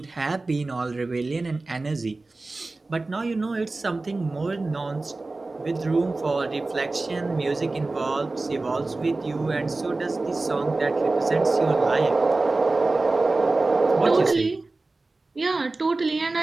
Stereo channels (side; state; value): left; quieter; 3.3 dB